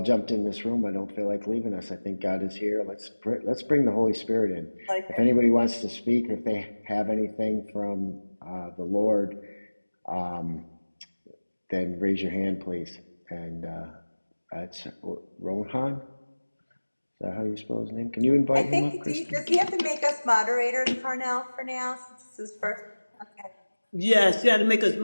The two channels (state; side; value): inverted; both; correlation -1.00